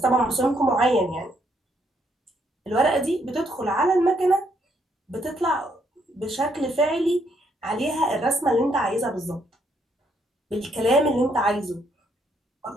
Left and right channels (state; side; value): normal; both; correlation 0.73